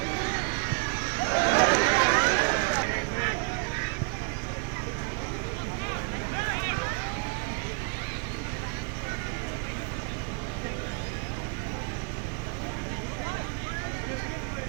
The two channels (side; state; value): left; quieter; 36.2 dB